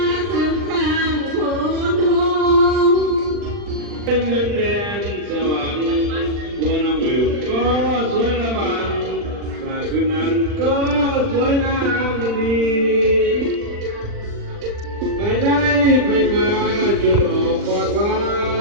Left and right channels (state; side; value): late; left; 40 ms